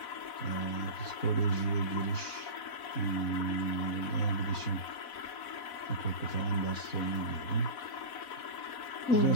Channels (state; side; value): late; right; 4.1 ms